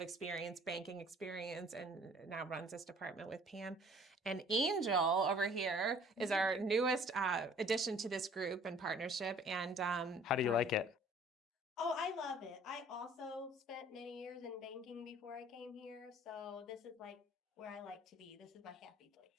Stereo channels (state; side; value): normal; both; correlation 0.54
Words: banking experience, and now runs this department with Pam. And Angel over here is our newest addition to this group and partnership. And How do you like it? Oh, I love it. I also spent many years in banking before I came here, so this is like where I like to be. This is my happy